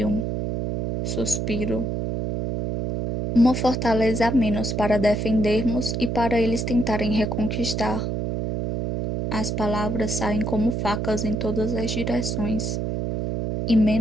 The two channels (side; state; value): right; noise; hum, 2 dB below the sound